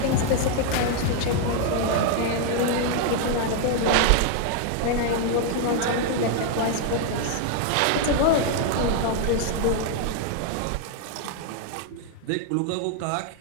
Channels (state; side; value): different; both; correlation 0.00